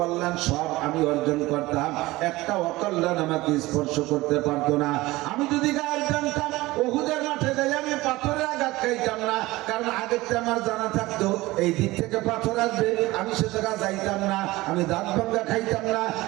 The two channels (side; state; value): left; quieter; 19.4 dB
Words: সব আমি অর্জন করতাম, একটা অকল্যাণ আমাকে স্পর্শ করতে পারতো না। আমি যদি গায়েব জানতাম উহুদের মাঠে যাই আমি পাথরের আঘাত খাইতাম না, কারণ আগেরটা আমার জানা থাকতো এই দিক থেকে পাথর আসবে, আমি সে জায়গা যাইতাম না। আমি দাঁত ভাঙ্গা খাইতাম না,